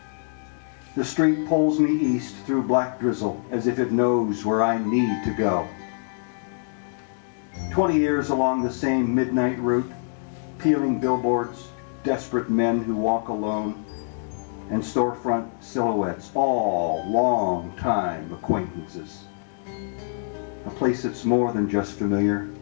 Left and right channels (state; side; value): silent; right; digital silence